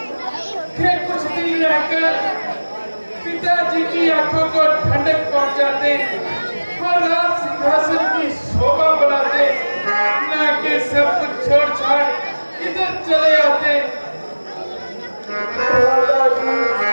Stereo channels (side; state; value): both; inverted; correlation -1.00